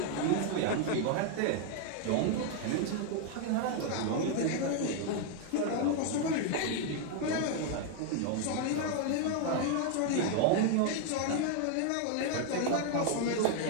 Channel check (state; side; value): different; both; correlation 0.00